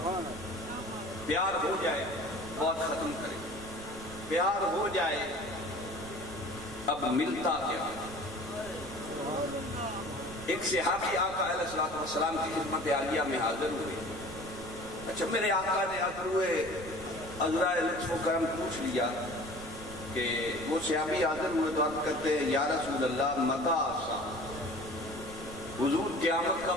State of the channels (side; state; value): right; noise; rumble, 14 dB below the sound